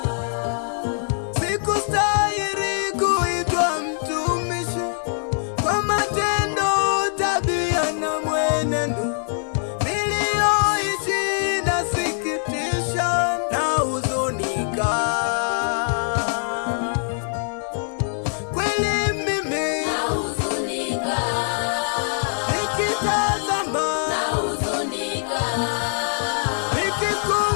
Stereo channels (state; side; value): silent; right; digital silence